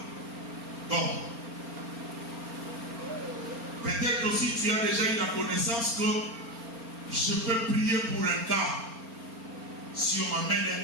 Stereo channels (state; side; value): late; left; 4.3 ms